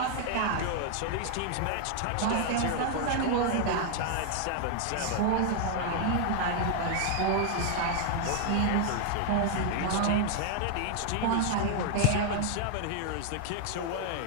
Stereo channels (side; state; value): both; different; correlation 0.00